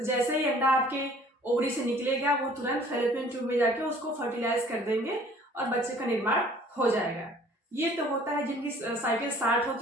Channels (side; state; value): both; normal; correlation 0.53